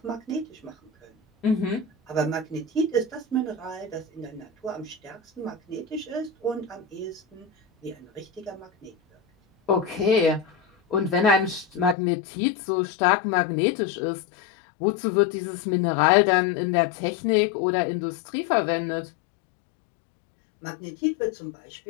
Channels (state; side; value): drops out; right; at 12.0 s